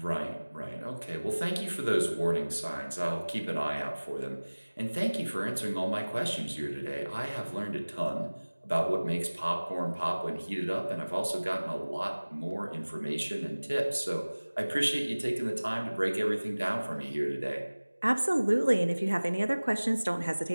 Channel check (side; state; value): both; inverted; correlation -1.00